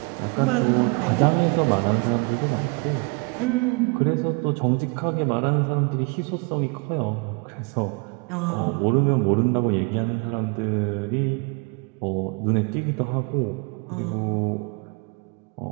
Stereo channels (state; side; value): quieter; left; 30.6 dB